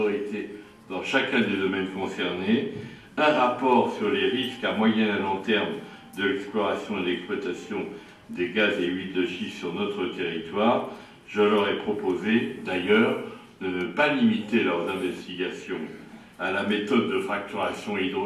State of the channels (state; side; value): identical; both; correlation 1.00